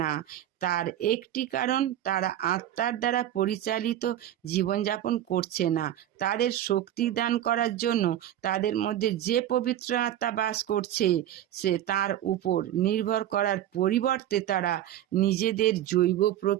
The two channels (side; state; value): left; quieter; 12.0 dB